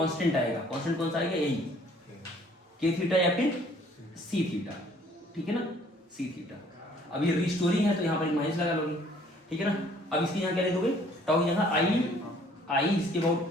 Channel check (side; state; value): both; normal; correlation 0.58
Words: आएगा, कांस्टेंट कौन सा आएगा, यही के थीटा या फिर सी थीटा। ठीक है ना, सी थीटा। अब ये रिस्टोरिंग है तो यहाँ पर एक माइनस लगा लोगे। ठीक है ना। अब इसके यहाँ क्या लिख दोगे, टाउ यहाँ आई इसके